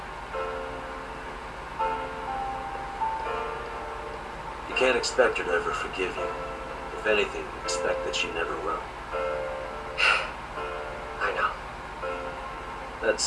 You can't expect her to ever forgive you. If anything, expect that she never will. I know. That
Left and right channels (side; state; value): both; identical; correlation 1.00